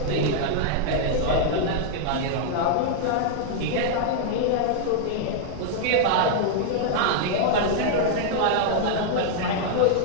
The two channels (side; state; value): both; different; correlation -0.01